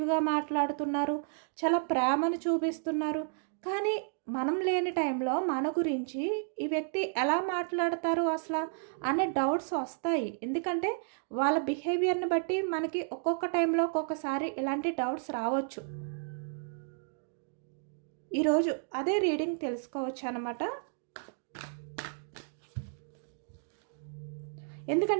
మాట్లాడుతున్నారు, చాలా ప్రేమను చూపిస్తున్నారు, కానీ మనం లేని టైంలో మన గురించి ఈ వ్యక్తి ఎలా మాట్లాడతారు అసలు అనే డౌట్స్ వస్తాయి. ఎందుకంటే వాళ్ళ బిహేవియర్ని బట్టి మనకి ఒక్కొక్క టైంలో ఒక్కొక్కసారి ఇలాంటి డౌట్స్ రావచ్చు. ఈరోజు అదే రీడింగ్ తెలుసుకోవచ్చు అనమాట.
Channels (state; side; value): silent; left; digital silence